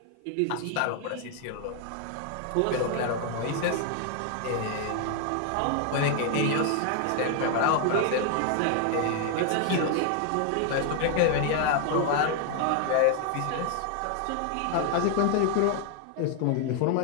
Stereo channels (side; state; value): both; different; correlation 0.00